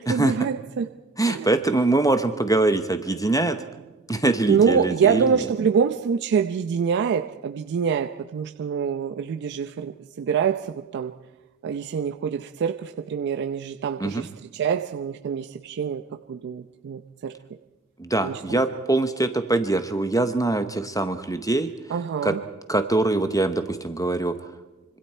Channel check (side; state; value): left; quieter; 3.9 dB